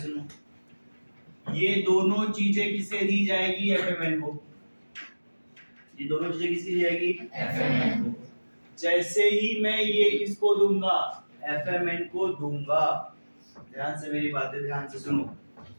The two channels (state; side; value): inverted; both; correlation -1.00